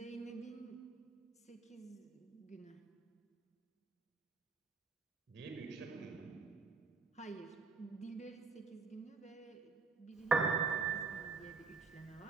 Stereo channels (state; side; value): quieter; left; 4.7 dB